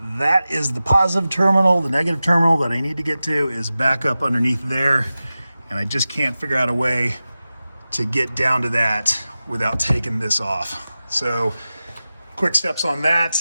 That is the positive terminal. The negative terminal that I need to get to is back up underneath there, and I just can't figure out a way to get down to that without taking this off. So quick steps on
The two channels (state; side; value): inverted; both; correlation -0.95